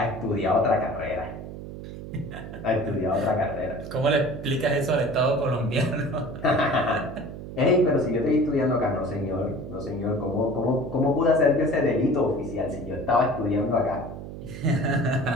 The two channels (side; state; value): right; noise; hum, 11 dB below the sound